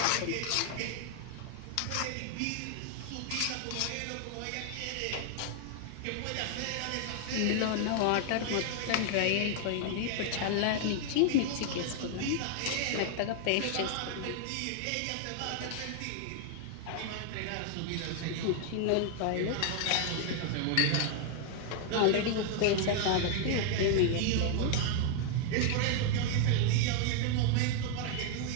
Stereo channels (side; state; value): both; different; correlation 0.00